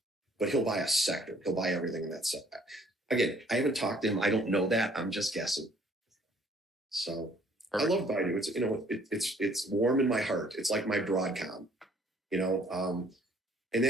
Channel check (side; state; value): both; normal; correlation 0.60